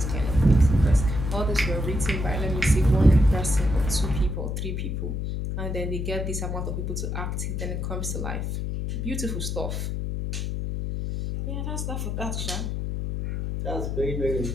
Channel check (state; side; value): noise; left; hum, 2 dB below the sound